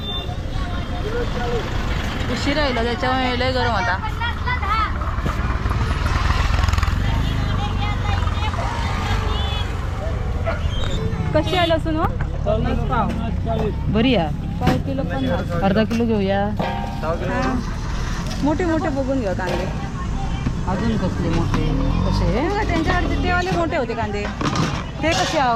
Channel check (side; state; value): both; identical; correlation 1.00